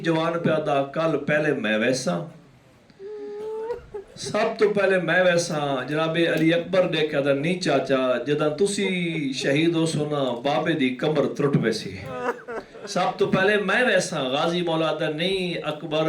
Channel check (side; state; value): both; identical; correlation 1.00